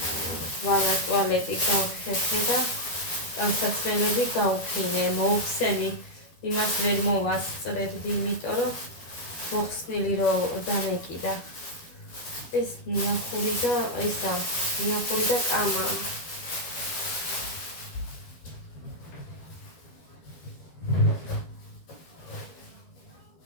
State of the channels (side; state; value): right; late; 12 ms